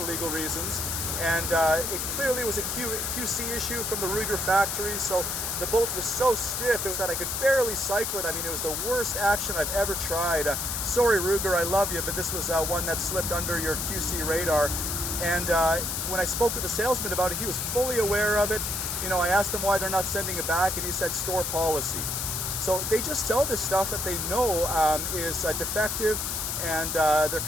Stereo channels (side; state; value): left; noise; hiss, 2 dB below the sound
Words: legal reasons, and it clearly was a QC issue from the Ruger factory, so the bolt was so stiff that I could barely cycle it. I mean, it was the worst action I've ever tried. Sorry, Ruger, I love you, but this was one that slipped under your QC radar. And when I spoke with the salesman about it, he was fully aware of it. You know, I asked him why they're not sending it back, and he said store policy. So they just sell this stuff that they know is defective, and their